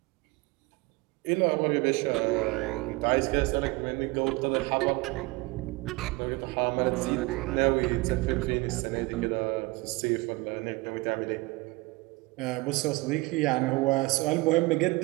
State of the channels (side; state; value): left; quieter; 23.5 dB